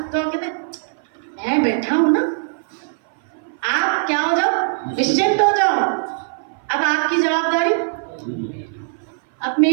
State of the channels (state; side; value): silent; left; 57 dB below the other